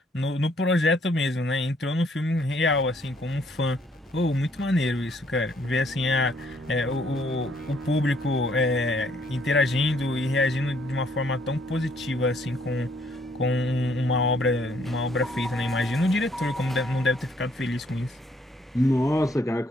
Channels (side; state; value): both; normal; correlation 0.66